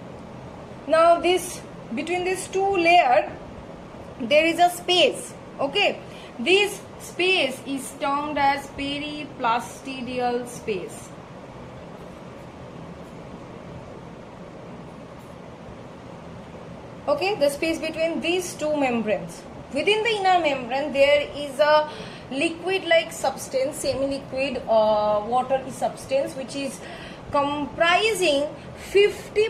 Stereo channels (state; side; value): identical; both; correlation 1.00